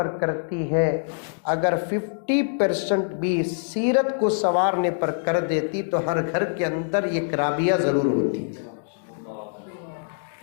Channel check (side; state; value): right; silent; digital silence